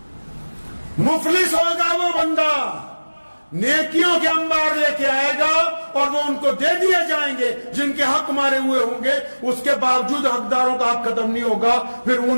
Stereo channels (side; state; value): both; inverted; correlation -1.00